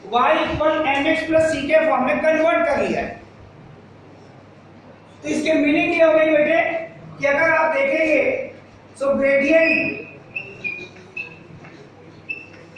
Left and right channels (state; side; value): identical; both; correlation 1.00